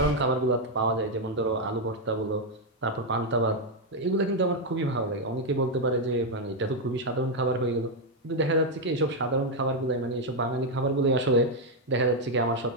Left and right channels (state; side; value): normal; both; correlation 0.01